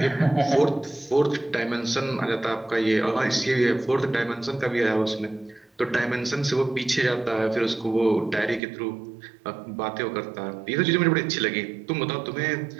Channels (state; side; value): drops out; left; at 8.6 s